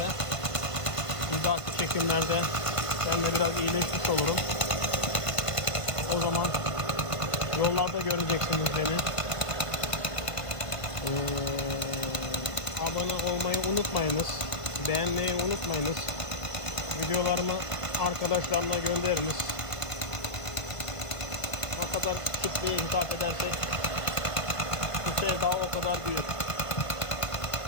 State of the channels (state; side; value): late; right; 1.5 ms